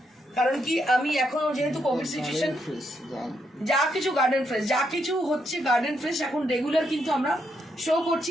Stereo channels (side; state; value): both; normal; correlation 0.78